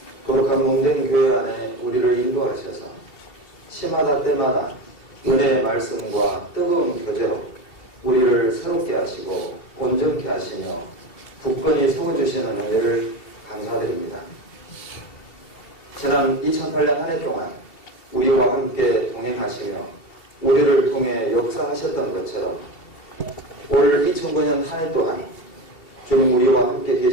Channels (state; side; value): late; right; 2.8 ms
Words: 거룩한 몸된 교회 안에 우리를 인도하셔서 시마다 때마다 은혜의 말씀과 뜨거운 교제로 우리를 새롭게 하시고 온전케 하시며 굳건히 세워주시는 은혜를 감사드립니다. 지난 2008년 한 해 동안 우리와 함께 동행하시며 우리를 통해 역사하셨던 것처럼 올 2009년 한 해 또한 주님 우리와 함께